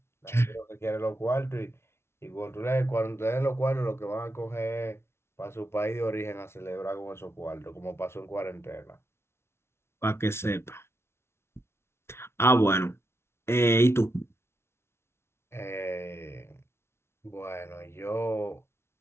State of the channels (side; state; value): right; late; 0.12 ms